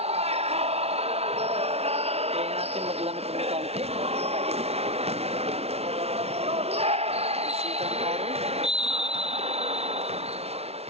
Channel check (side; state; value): left; late; 0.30 ms